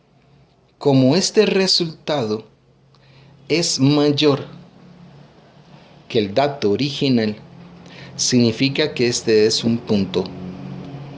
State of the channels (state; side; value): identical; both; correlation 1.00